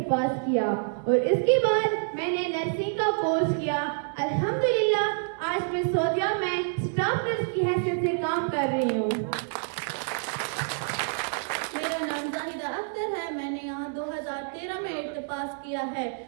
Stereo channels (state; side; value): silent; left; digital silence